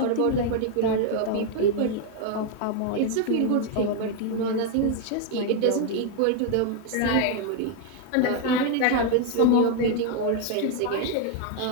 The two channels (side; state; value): both; different; correlation 0.00